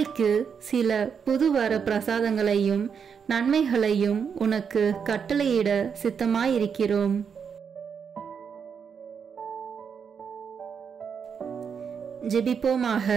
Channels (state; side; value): quieter; left; 6.7 dB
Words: சில புதுவர பிரசாதங்களையும் நன்மைகளையும் உனக்கு கட்டளையிட சித்தமாயிருக்கிறோம். ஜெபிப்போமாக.